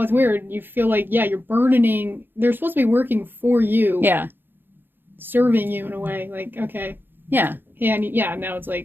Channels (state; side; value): late; left; 0.098 ms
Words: it's weird. You feel like, you're burdening. They're supposed to be working for you. Yeah. Serving you in a way. Like, okay. Yeah. And now it's